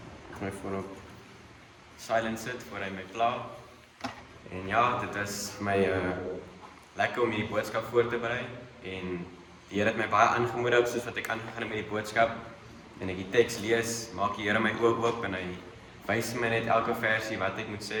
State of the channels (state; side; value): identical; both; correlation 1.00